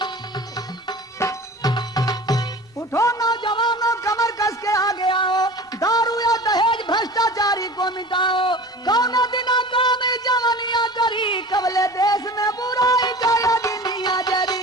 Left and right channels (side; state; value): both; normal; correlation 0.38